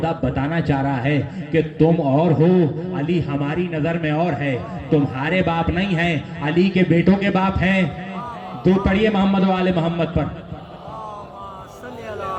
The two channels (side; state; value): both; identical; correlation 1.00